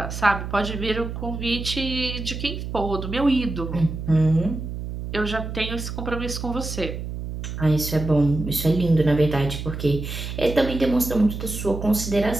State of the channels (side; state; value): right; noise; hum, 6 dB below the sound